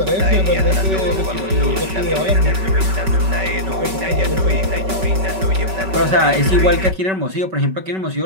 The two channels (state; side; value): late; left; 5.2 ms